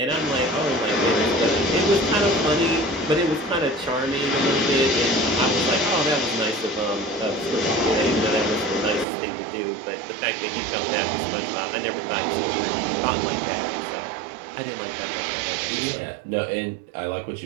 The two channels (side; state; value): left; drops out; at 9.1 s